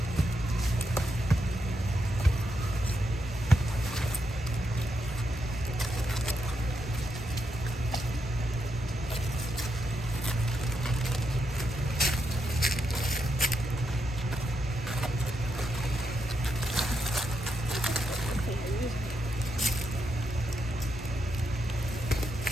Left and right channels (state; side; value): normal; both; correlation 0.82